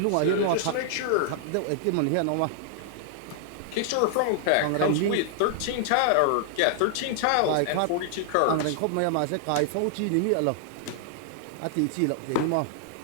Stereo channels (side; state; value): both; different; correlation -0.01